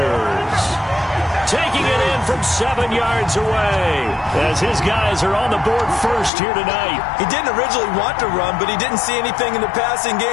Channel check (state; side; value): drops out; right; at 6.3 s